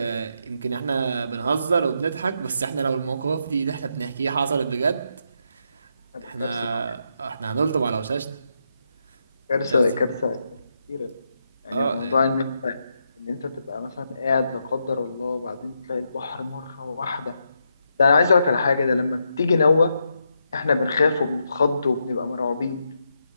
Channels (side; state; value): both; inverted; correlation -0.81